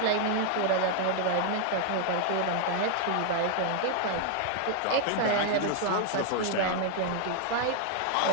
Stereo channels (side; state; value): both; different; correlation 0.00